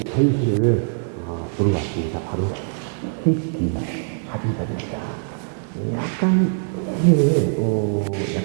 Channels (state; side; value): silent; left; 64 dB below the other